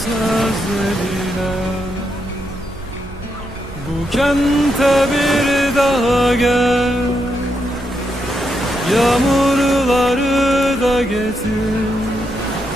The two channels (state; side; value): noise; right; hum, 18 dB below the sound